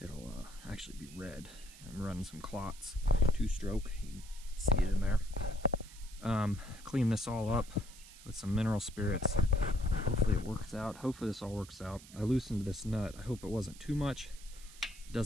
actually be red. I'm running some clots, 2-stroke, you can see it in there. Clean this all up with some mineral spirits. Hopefully it works out. Hopefully this all works out. I loosened this nut. I hope it wasn't too much. It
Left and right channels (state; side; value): noise; right; hiss, 19 dB below the sound